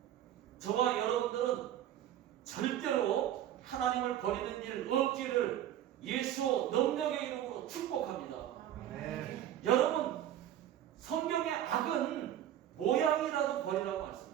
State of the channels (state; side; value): quieter; left; 11.5 dB